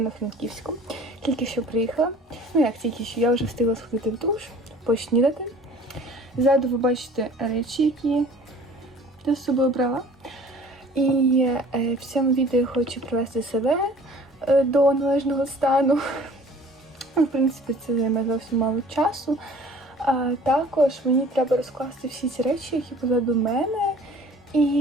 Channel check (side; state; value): both; normal; correlation 0.49